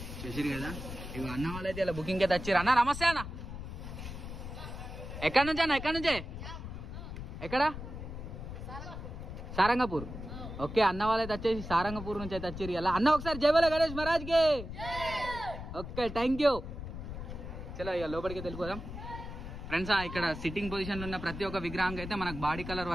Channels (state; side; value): noise; left; rumble, 9 dB below the sound